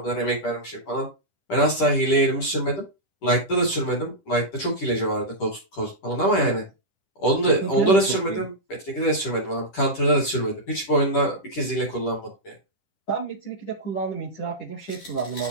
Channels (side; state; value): right; late; 10 ms